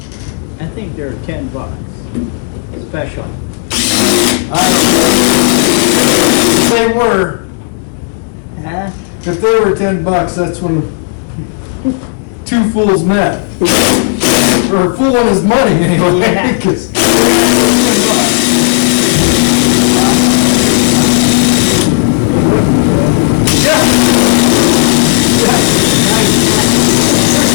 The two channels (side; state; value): right; silent; digital silence